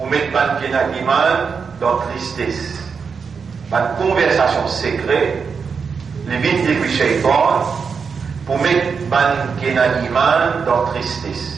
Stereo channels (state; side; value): quieter; left; 5.8 dB